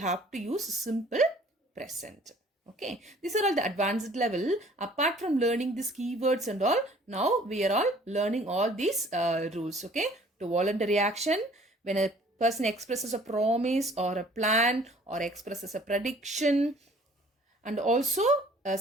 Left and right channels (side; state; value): both; normal; correlation 0.54